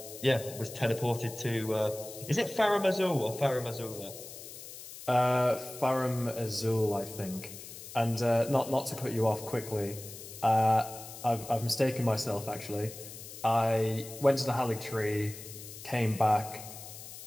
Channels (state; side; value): noise; left; hiss, 13 dB below the sound